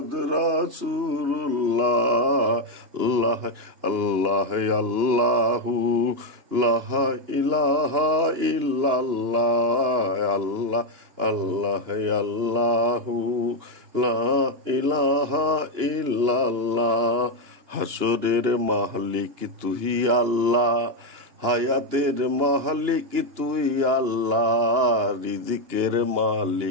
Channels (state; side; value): late; left; 2.9 ms